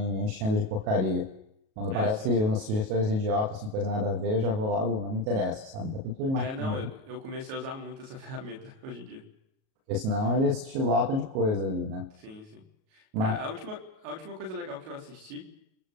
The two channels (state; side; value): late; left; 37 ms